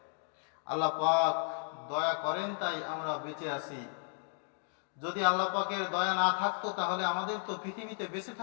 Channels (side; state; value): right; silent; 55 dB below the other